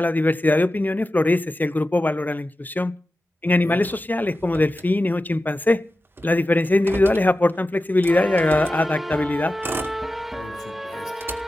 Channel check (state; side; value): normal; both; correlation 0.93